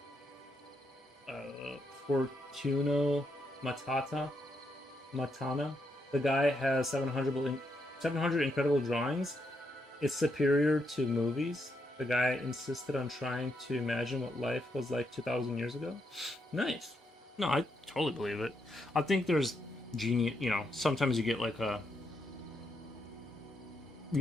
Fortuno Matana. The guy has 700 incredible drawings. It's superior to movies. The guy insisted on trying to imagine what life was like 2,000 years ago. Nice. No, I totally believe it. I think there's genius. You know, sometimes you get like a,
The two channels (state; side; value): normal; both; correlation 0.79